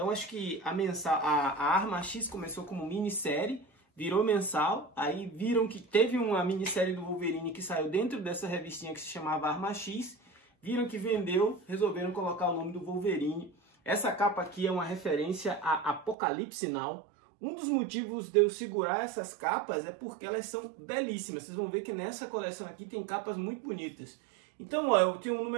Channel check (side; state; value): left; drops out; at 16.2 s